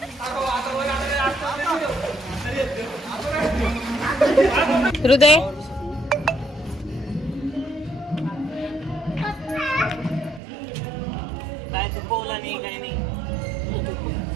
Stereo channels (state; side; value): drops out; left; at 10.4 s